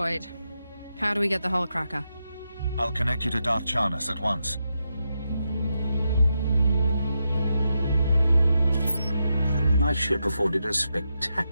How do we get the Hullcracker? I'll connect you to Darth Charnas at once. My ship afforded a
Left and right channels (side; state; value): both; inverted; correlation -0.86